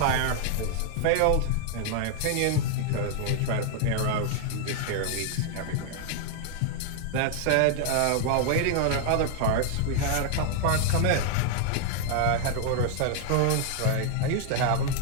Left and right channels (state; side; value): different; both; correlation 0.00